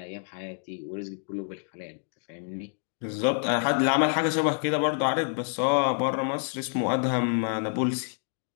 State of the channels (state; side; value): silent; right; digital silence